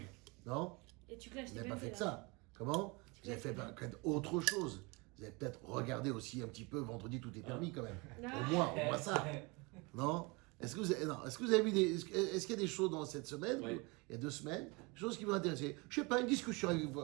Non? Et tu clashes Vous n'avez pas fait que ça. Comment? Vous avez fait peut-être autre chose. Vous avez peut-être regardé aussi un petit peu Vendredi tout est permis quand même. Au moins ça. Non? Est-ce que vous avez vu est-ce qu'il y a des choses dans cette semaine, il y a 2 semaines, des choses qui vous intéressent? Je sais pas, une discussion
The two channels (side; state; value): left; quieter; 27.3 dB